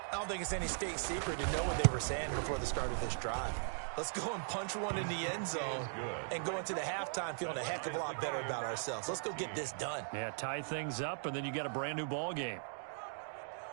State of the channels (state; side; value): silent; left; digital silence